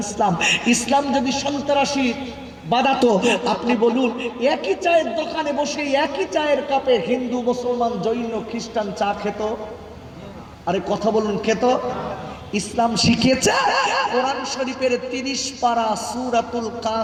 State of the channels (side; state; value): both; identical; correlation 1.00